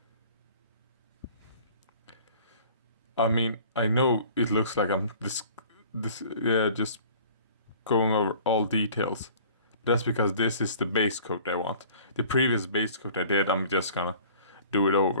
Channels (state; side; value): inverted; both; correlation -0.48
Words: I mean, I know it looks like I'm just going over all details. That's because this is the base coat I want. The previous base coat I did, I'm just gonna do it